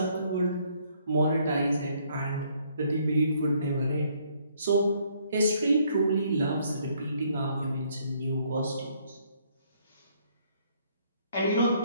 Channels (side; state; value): both; inverted; correlation -0.67